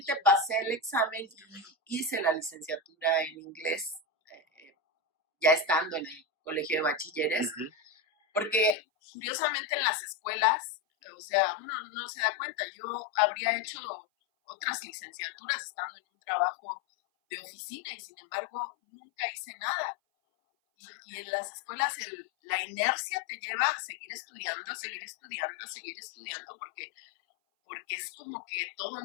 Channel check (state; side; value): drops out; right; at 8.8 s